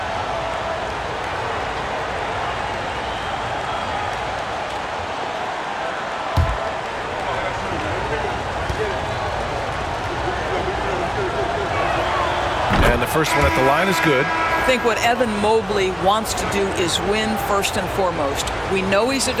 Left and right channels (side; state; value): both; identical; correlation 1.00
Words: And the first one at the line is good. I think what Evan Mobley wants to do is win first and foremost. We know he's a